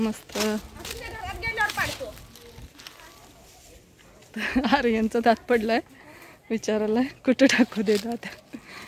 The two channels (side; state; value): both; identical; correlation 1.00